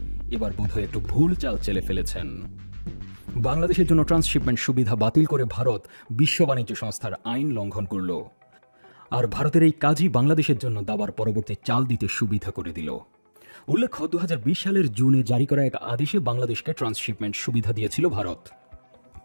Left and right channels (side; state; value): both; inverted; correlation -1.00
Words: এবার বোধহয় একটু ভুল চাল চেলে ফেলেছেন। বাংলাদেশের জন্য ট্রান্সশিপমেন্ট সুবিধা বাতিল করে ভারত বিশ্ব বাণিজ্য সংস্থার আইন লঙ্ঘন করল। আর ভারতের এই কাজই বাংলাদেশের জন্য দাবার পরবর্তী চাল দিতে সুবিধা করে দিল। উল্লেখ্য, 2020 সালের জুনে জারি করা এক আদেশে বাংলাদেশকে ট্রান্সশিপমেন্ট সুবিধা দিয়েছিল ভারত।